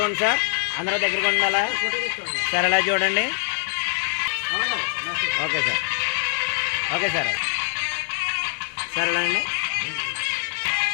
సార్, అందరూ దగ్గరగా ఉండాలా సార్. అలా చూడండి. Okay sir. Okay sir. Sir అలా అండి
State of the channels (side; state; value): right; silent; 61 dB below the other